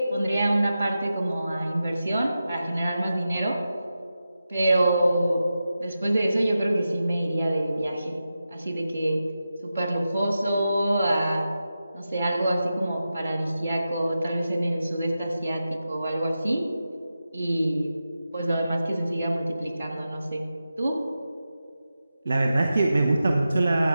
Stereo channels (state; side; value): inverted; both; correlation -0.91